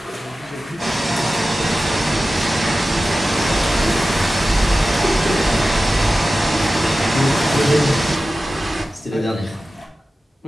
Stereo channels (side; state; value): both; normal; correlation 0.95